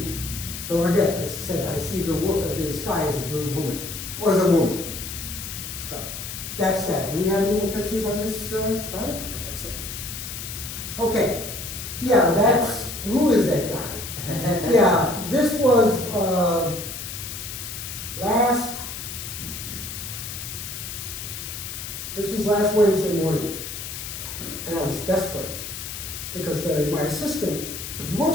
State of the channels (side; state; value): left; noise; hiss, 8 dB below the sound